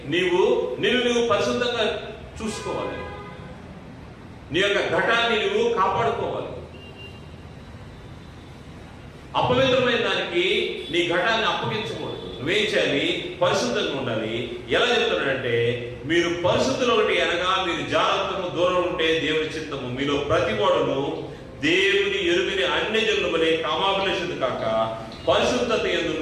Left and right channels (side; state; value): both; identical; correlation 1.00